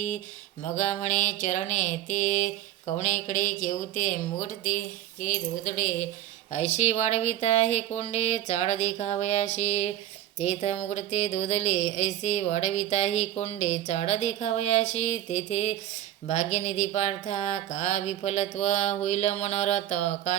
मगा म्हणे चरणे ते कवणेकडे केवते मुगटते के धोदडे ऐशी वाढविता हे कोंडे चाड देखावयाशी तेथ मुगडते धोदले ऐसे वाढविता ही कोंडे चाड देखावयाशी तेथे भाग्यनिधी पार्था का विफलत्व होईल मनोरथ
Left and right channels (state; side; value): quieter; left; 12.6 dB